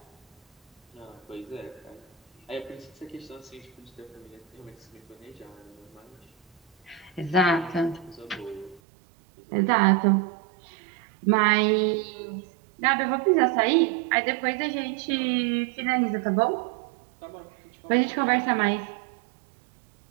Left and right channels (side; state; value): left; drops out; at 8.8 s